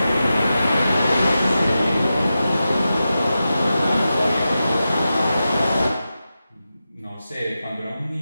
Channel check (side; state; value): both; inverted; correlation -0.91